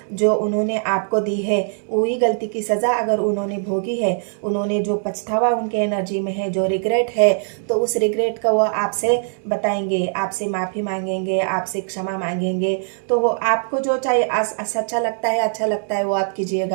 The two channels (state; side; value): silent; left; 65 dB below the other